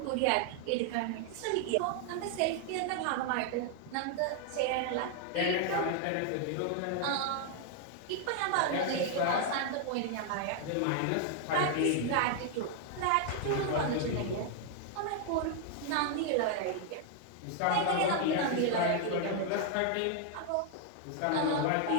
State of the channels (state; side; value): different; both; correlation 0.00